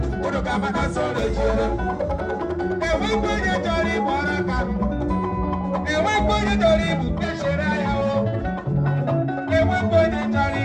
kono kama na sole jere ewe kwenye chori moraka ewe kwenye chori bukeshera yao ewe kwenye chori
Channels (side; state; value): both; identical; correlation 1.00